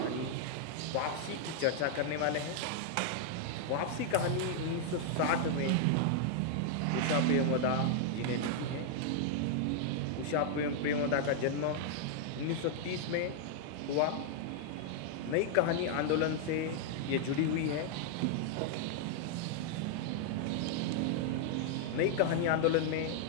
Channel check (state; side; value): different; both; correlation 0.00